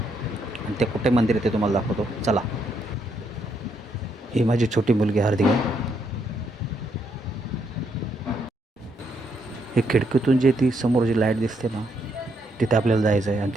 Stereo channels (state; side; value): normal; both; correlation 0.75